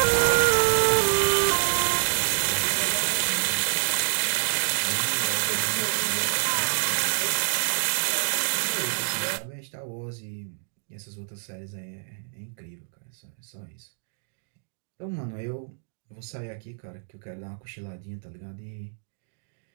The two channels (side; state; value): left; silent; digital silence